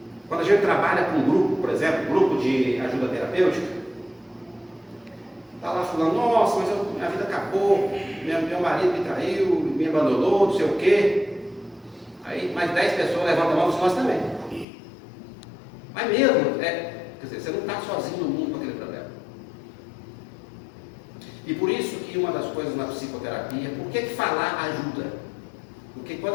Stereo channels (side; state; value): right; drops out; at 14.7 s